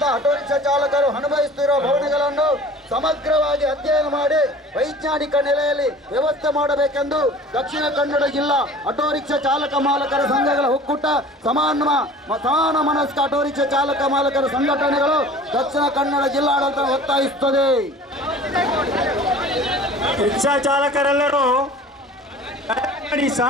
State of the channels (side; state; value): both; normal; correlation 0.44